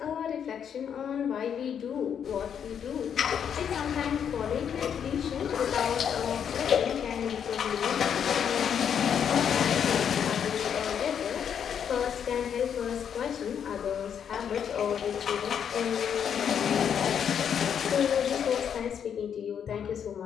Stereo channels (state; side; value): quieter; right; 8.2 dB